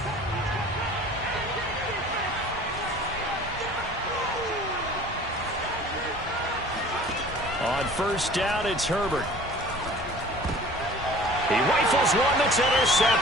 On first down, it's Herbert. He rifles one that's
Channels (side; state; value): both; normal; correlation 0.46